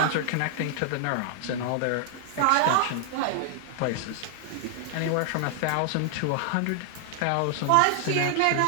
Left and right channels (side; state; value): both; different; correlation 0.00